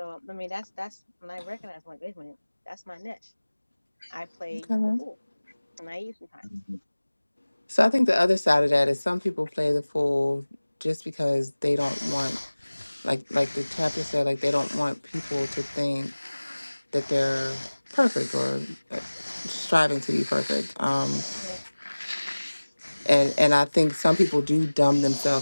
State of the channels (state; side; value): inverted; both; correlation -1.00